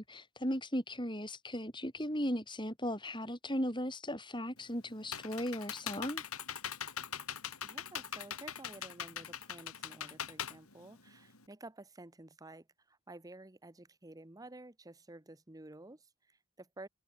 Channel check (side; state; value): both; normal; correlation 0.62